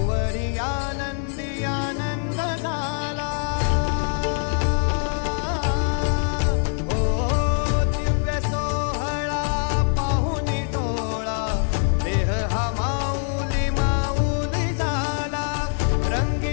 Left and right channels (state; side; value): silent; right; 55 dB below the other